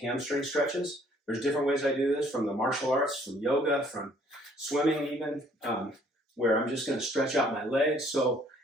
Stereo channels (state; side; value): normal; both; correlation 0.61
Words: hamstring stretches. There's different ways I do this, from the martial arts, from yoga, from swimming even, where I'm just going to stretch out my legs. So